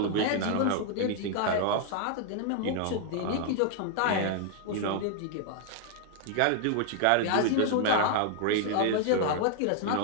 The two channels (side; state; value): both; different; correlation 0.00